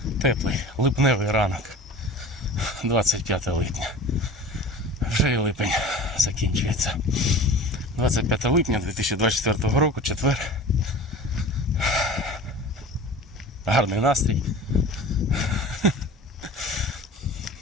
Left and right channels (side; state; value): both; normal; correlation 0.38